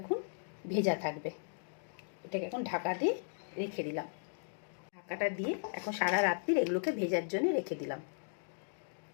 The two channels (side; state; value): right; silent; digital silence